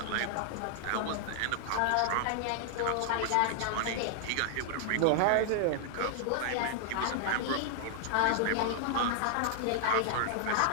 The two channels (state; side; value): different; both; correlation 0.00